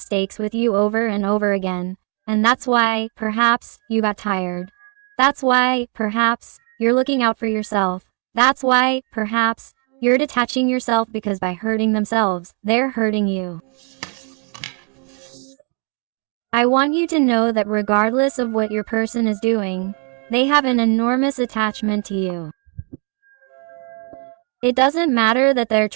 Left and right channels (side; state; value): left; quieter; 39.7 dB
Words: with you over and over again. And that's why, perhaps, you got tired. That's why, perhaps, you're looking out for yourself. That's why, perhaps, you're detaching yourself, because by hurting themselves, they're hurting you. I want you to know that regardless of what your person is doing, they have an enormous attachment to you. It doesn't matter that they're